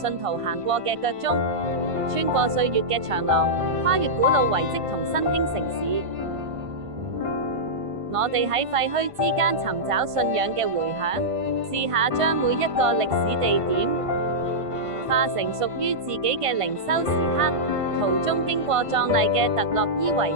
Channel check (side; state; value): left; late; 1.5 ms